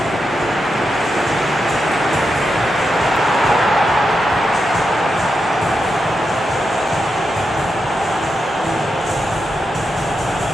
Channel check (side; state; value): both; normal; correlation 0.86